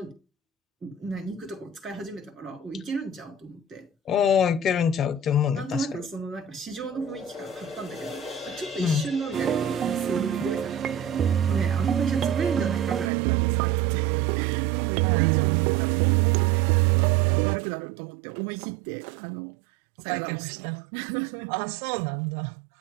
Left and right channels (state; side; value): drops out; left; at 13.1 s